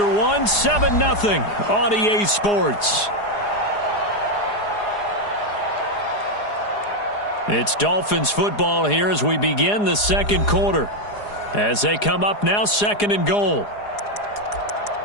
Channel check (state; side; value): late; right; 4.8 ms